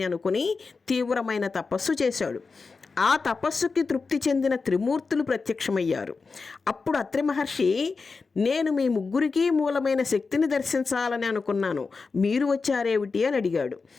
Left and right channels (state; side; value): quieter; right; 4.5 dB